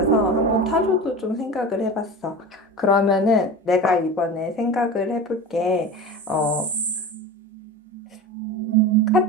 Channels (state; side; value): normal; both; correlation 0.30